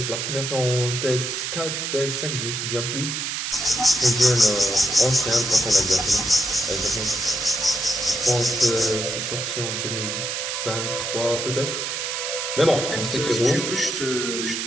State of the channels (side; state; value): right; noise; hiss, 3 dB below the sound